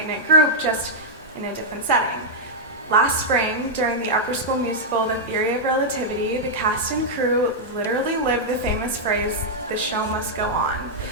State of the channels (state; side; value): normal; both; correlation -0.06